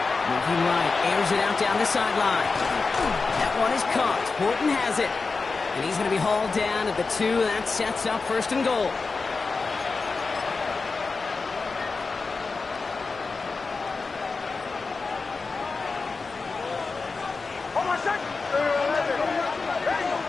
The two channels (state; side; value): quieter; right; 4.2 dB